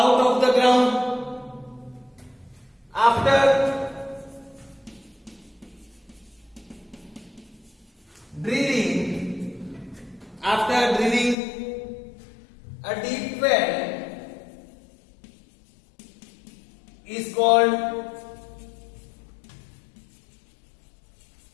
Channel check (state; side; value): drops out; right; at 11.4 s